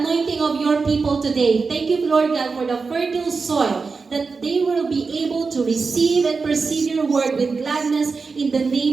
anointing of your people today. Thank you, Lord God, for the fertile soil that they will be able to receive and perceive your word with gladness in the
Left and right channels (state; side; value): quieter; left; 4.6 dB